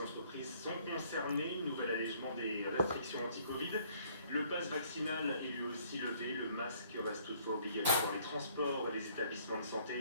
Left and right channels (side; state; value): both; inverted; correlation -0.61